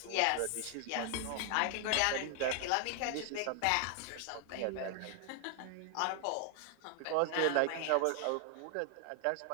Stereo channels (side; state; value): both; different; correlation 0.00